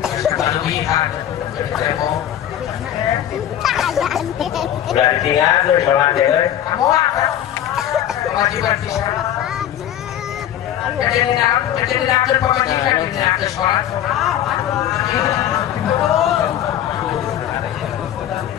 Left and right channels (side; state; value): right; quieter; 11.1 dB